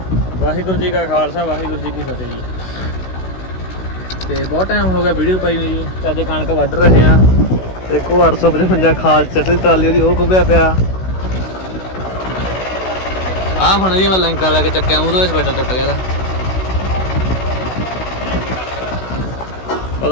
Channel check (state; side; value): late; right; 16 ms